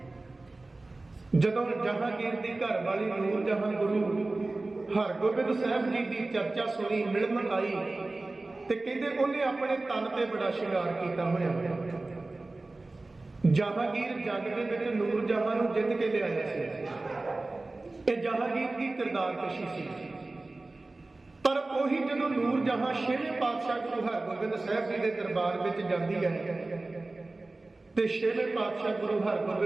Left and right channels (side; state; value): left; quieter; 3.1 dB